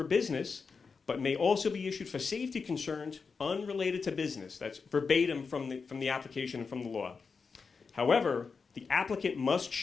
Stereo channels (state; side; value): quieter; right; 5.1 dB